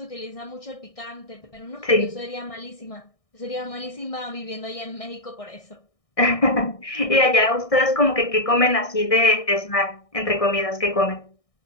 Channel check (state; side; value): late; right; 1.6 ms